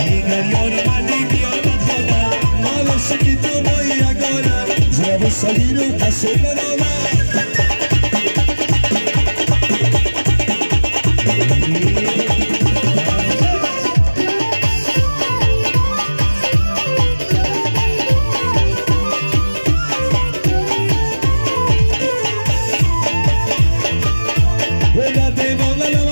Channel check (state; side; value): inverted; both; correlation -1.00